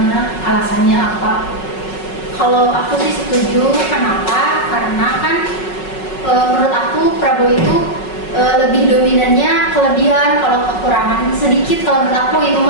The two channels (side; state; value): right; late; 5.4 ms